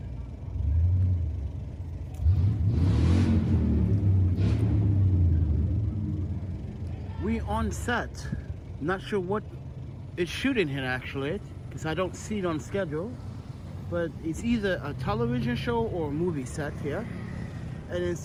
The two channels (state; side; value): identical; both; correlation 1.00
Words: We on set. Not sure what it's shooting here actually, because I don't see it on schedule. But it's either a television show or a movie set here. And it